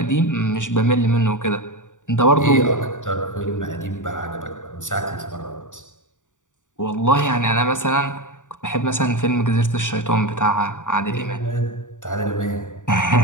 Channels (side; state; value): right; late; 0.86 ms